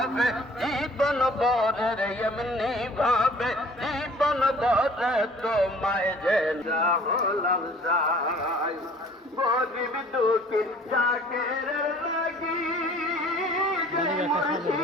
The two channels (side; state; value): both; normal; correlation 0.51